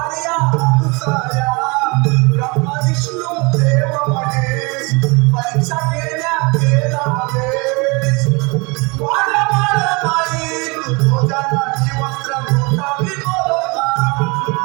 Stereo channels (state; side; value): quieter; left; 28.3 dB